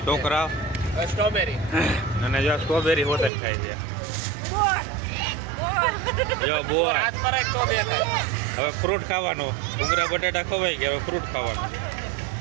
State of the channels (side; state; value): left; drops out; at 3.3 s